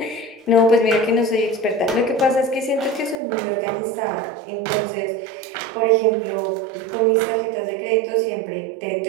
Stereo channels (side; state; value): left; drops out; at 3.2 s